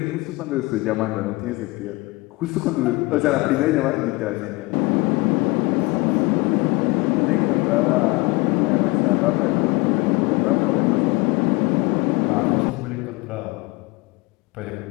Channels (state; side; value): quieter; right; 23.6 dB